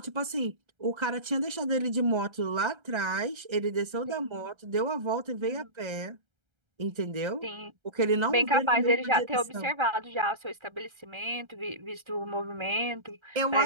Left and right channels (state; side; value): late; left; 1.3 ms